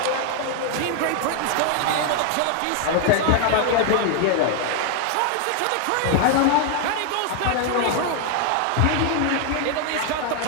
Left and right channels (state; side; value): different; both; correlation 0.00